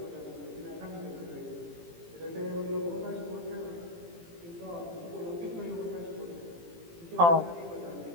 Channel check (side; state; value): left; late; 18 ms